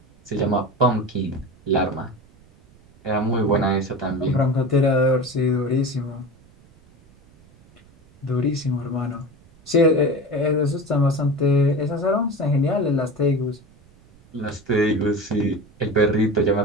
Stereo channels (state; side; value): noise; right; rumble, 28 dB below the sound